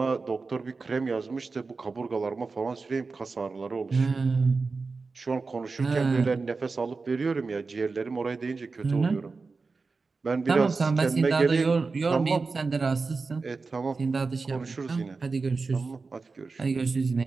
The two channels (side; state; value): left; quieter; 4.2 dB